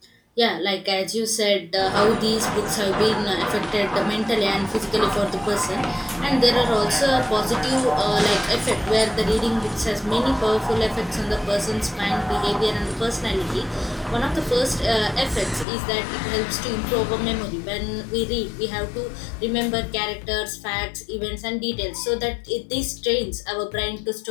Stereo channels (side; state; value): right; drops out; at 15.7 s